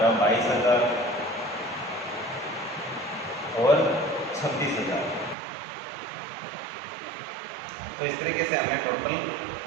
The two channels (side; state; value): left; drops out; at 5.4 s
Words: 22,000 और 26,000। तो इस तरीके से हमने टोटल